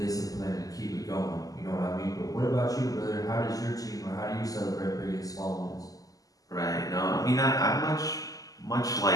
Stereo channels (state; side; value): late; right; 0.17 ms